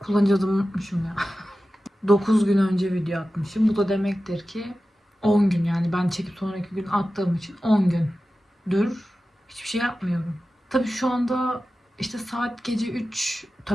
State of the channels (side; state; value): both; normal; correlation 0.94